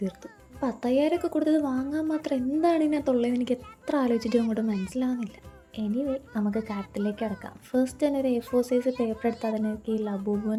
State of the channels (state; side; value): identical; both; correlation 1.00